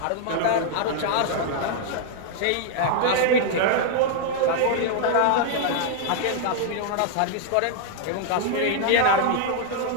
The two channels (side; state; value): both; different; correlation 0.00